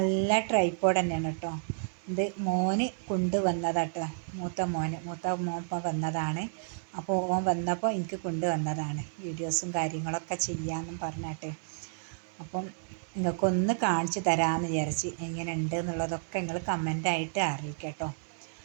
ട്രൈപോഡ് തന്നെയാണ് കേട്ടോ. ഇത് മോന് കൊണ്ടുവന്നതാട്ടോ, മൂത്ത മോൻ വന്നതാണ്. അപ്പോൾ ഓൻ വന്നപ്പോൾ എനിക്ക് കൊണ്ടുവന്നതാണ്, വീഡിയോസും കാര്യങ്ങളൊക്കെ ചെയ്യാമെന്നും പറഞ്ഞിട്ട്. അപ്പം നിങ്ങൾക്കൊന്ന് കാണിച്ചു തരാമെന്ന് വിചാരിച്ച്. എങ്ങനെ ഉണ്ട് എന്നുള്ളതൊക്കെ നിങ്ങൾ കമൻ്റായിട്ട് അറിയിക്കട്ടോ.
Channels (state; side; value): silent; left; digital silence